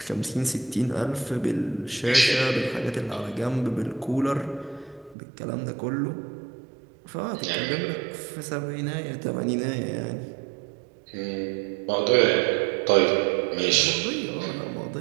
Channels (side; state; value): left; drops out; at 5.2 s